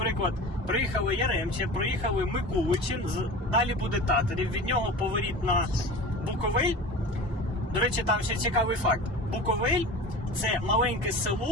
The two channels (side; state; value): both; normal; correlation 0.34